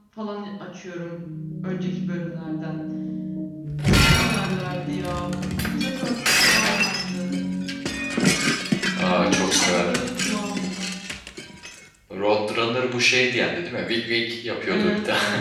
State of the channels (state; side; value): identical; both; correlation 1.00